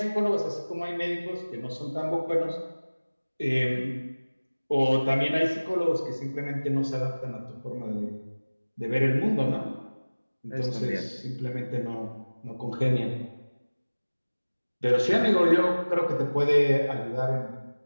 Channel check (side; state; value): both; inverted; correlation -1.00